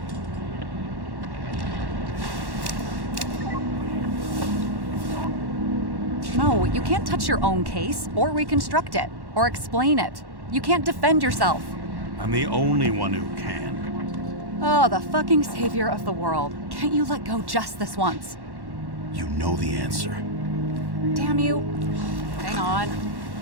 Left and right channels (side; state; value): left; late; 1.1 ms